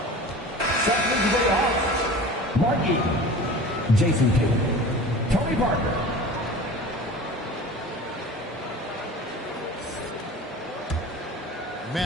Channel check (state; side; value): normal; both; correlation 0.38